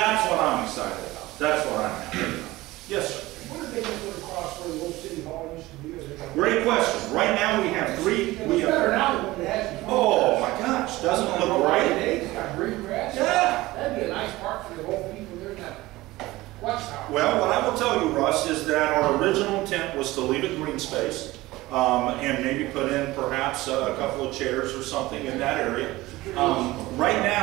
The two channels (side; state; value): left; quieter; 18.7 dB